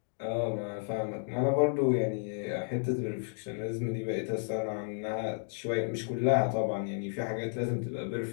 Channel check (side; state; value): right; silent; digital silence